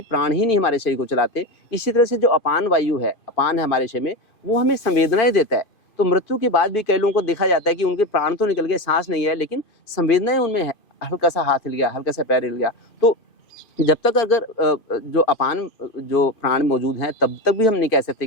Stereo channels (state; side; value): late; right; 2.5 ms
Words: प्राण ही नहीं हमारे शरीर को चलाते। इसी तरह से जो अपान वायु है, अपान है हमारे शरीर में, वो हमें संवेदनाएं देता है। तो मृत्यु के बाद भी कई लोगों को देखा जाता है कि उनके प्राण तो निकल गए, सांस नहीं है, लेकिन संवेदनाएं उनमें है। हल्का सा हाथ हिल गया, हल्का सा पैर हिल गया। तो जब तक अगर जो अपान जो प्राण मौजूद हैं तब तक भी हम नहीं कह